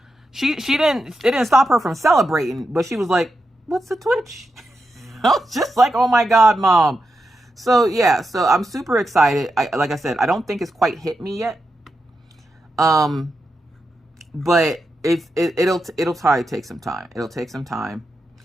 It didn't stop her from celebrating, but she was like, what's a Twitch? I was just like, oh my God, Mom. So yeah, so I'm super excited. Like I said, I don't think it's quite hit me yet. But it'll probably take some time. It'll take some time.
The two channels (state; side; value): normal; both; correlation 0.87